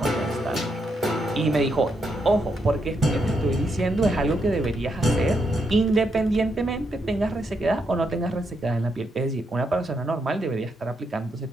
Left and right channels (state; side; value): normal; both; correlation 0.80